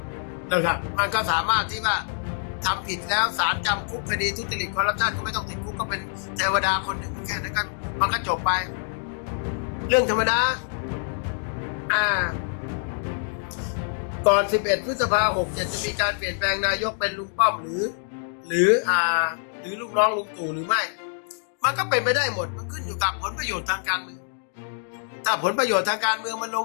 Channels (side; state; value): right; silent; digital silence